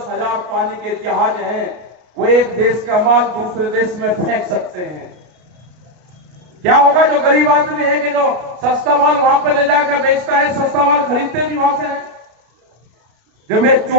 हजार पानी के जहाज हैं, वो एक देश का माल दूसरे देश में फेंक सकते हैं। क्या होगा? जो गरीब आदमी है कि जो सस्ता माल वहां पर ले जाकर बेचता है, सस्ता माल खरीदते भी वहां से है। जब ये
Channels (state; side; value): late; left; 33 ms